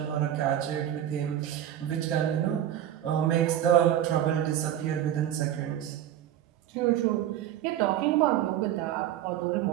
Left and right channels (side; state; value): left; quieter; 11.5 dB